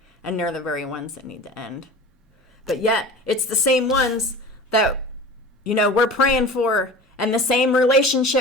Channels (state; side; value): normal; both; correlation 0.37